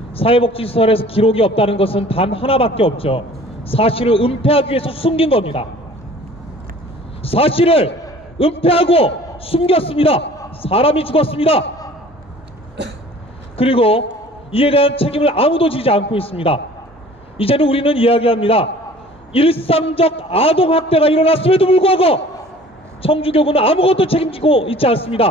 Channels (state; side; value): normal; both; correlation 0.49